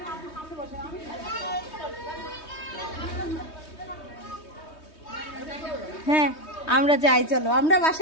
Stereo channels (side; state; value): right; late; 3.2 ms